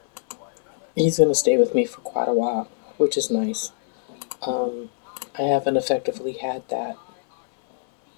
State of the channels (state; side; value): silent; right; 63 dB below the other